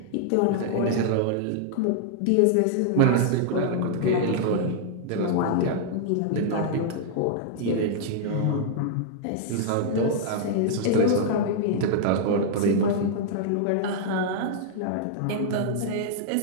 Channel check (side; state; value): both; different; correlation -0.01